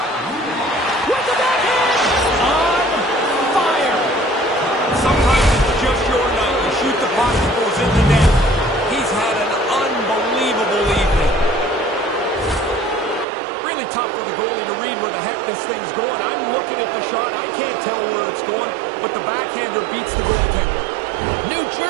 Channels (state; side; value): drops out; left; at 13.2 s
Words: With the backhand! On fire! Sometimes it's just your night. You shoot the puck, it goes in the net. He's had an unbelievable evening. Really tough for the goalie to read where the heck this thing's going. I'm looking at the shot. I can't tell where it's going, but the backhander beats the goaltender. New